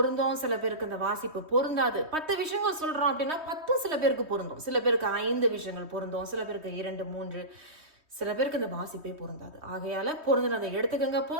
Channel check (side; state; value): left; late; 3.2 ms